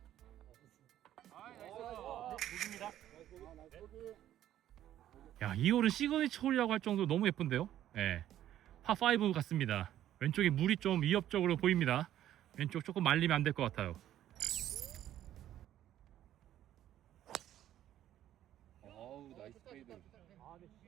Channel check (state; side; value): quieter; left; 12.1 dB